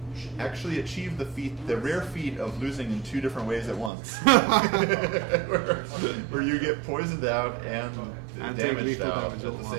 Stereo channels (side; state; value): left; drops out; at 3.9 s